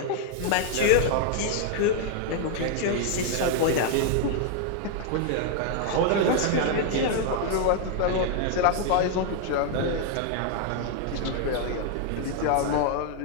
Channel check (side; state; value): both; different; correlation 0.00